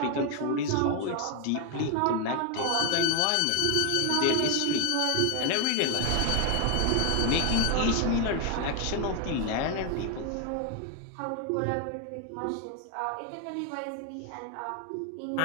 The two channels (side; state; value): both; different; correlation 0.01